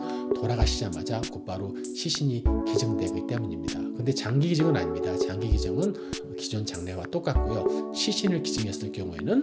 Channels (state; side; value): identical; both; correlation 1.00